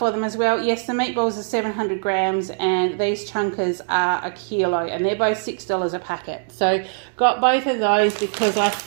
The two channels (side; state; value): left; silent; 65 dB below the other